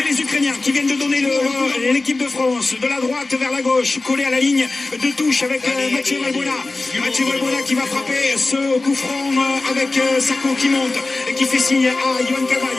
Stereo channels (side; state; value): right; quieter; 3.2 dB